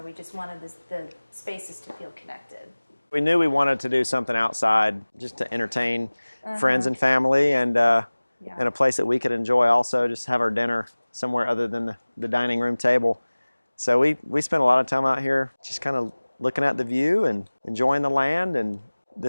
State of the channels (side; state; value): both; inverted; correlation -1.00